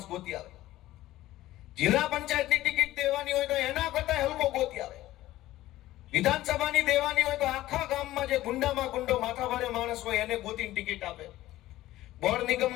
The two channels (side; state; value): right; quieter; 15.7 dB